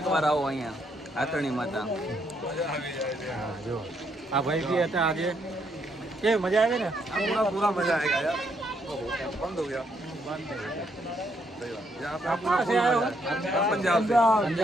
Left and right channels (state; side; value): normal; both; correlation 0.74